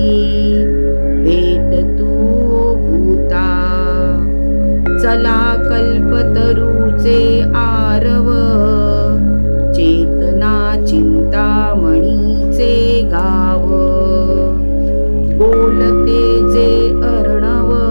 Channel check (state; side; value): inverted; both; correlation -1.00